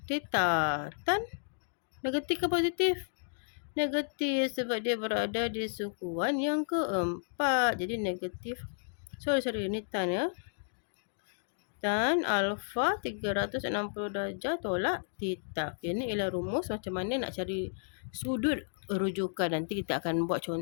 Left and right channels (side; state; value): right; silent; digital silence